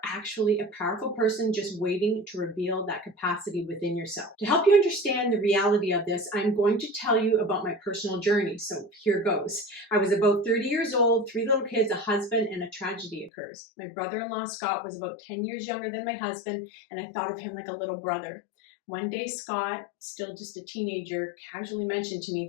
actually a powerful person just waiting to reveal that capacity within yourself. To help you understand the reality of this, I'm going to tell you about my personal journey. So here goes. I was about 30 years old, 3 little kids, a husband, and a tragedy occurs. My brother-in-law, Scott, was about 10 years younger than my husband, and I thought of him like a little brother. One day, Scott, still just a teenager, casually mentioned to me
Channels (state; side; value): drops out; right; at 13.3 s